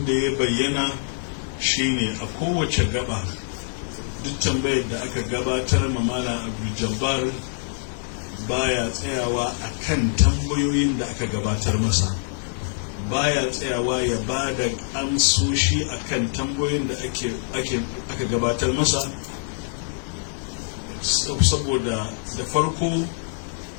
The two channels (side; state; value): right; silent; digital silence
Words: da ya bayyana shine a kowace gaba duk tambayar da aka gabatar ma Malam Abdul Jabbar baya tsayawa akan tambayoyin da aka gabatar masa, baya tsayawa ya ba da amsoshi akan tambayoyin da aka gabatar masa, saboda da farko